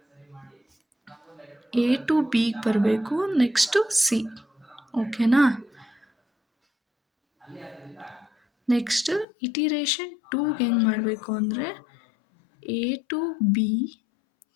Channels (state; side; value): drops out; right; at 9.2 s